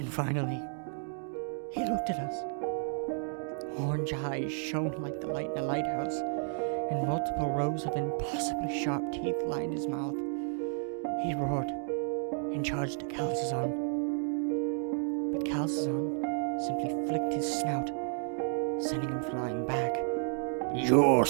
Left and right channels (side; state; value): left; silent; 56 dB below the other